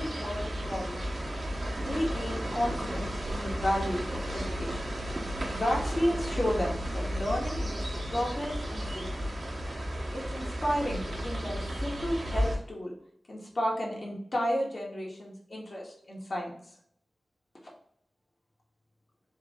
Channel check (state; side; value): normal; both; correlation 0.95